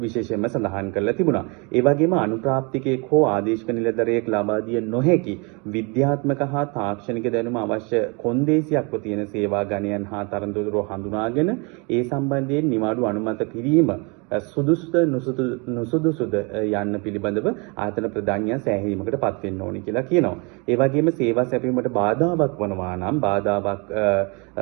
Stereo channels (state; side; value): quieter; left; 30.7 dB